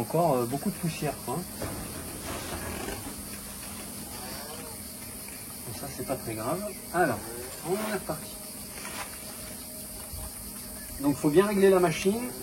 beaucoup de poussière. Quoi. Ça c'est pas très grave. Alors, on est reparti. Donc il faut bien régler la machine,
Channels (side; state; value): both; identical; correlation 1.00